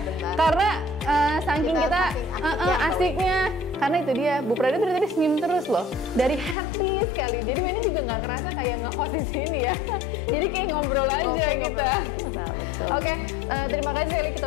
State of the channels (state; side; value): drops out; right; at 6.6 s